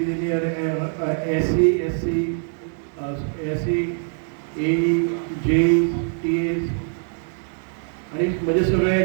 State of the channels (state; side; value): silent; left; 63 dB below the other